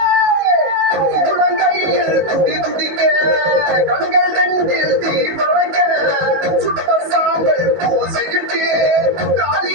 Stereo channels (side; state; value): left; late; 19 ms